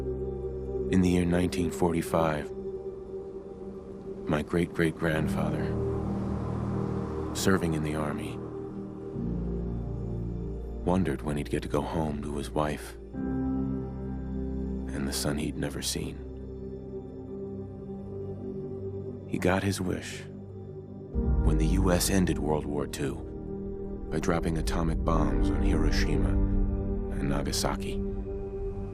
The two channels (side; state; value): both; identical; correlation 1.00